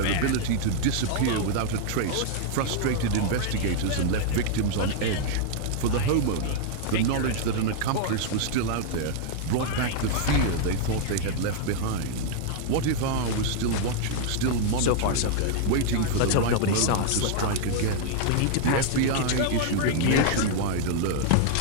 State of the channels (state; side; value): different; both; correlation -0.01